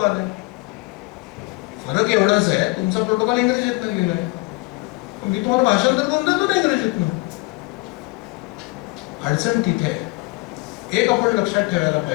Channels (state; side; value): quieter; right; 25.4 dB